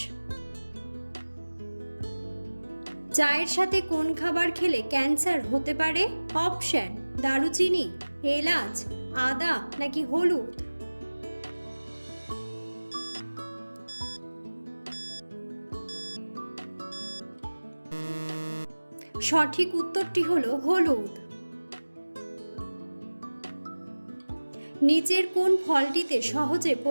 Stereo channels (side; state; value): both; inverted; correlation -1.00